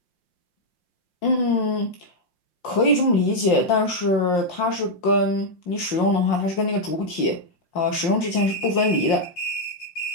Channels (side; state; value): right; late; 5.7 ms